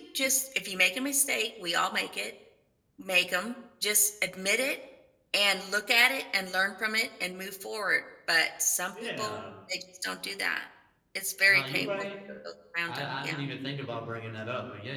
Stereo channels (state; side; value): identical; both; correlation 1.00